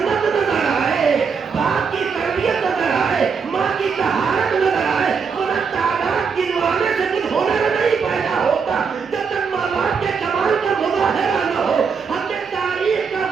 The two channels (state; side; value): quieter; left; 5.8 dB